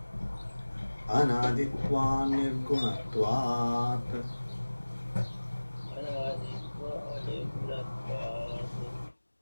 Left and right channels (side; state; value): both; inverted; correlation -1.00